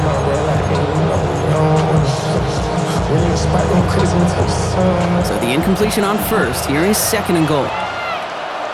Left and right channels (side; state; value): both; identical; correlation 1.00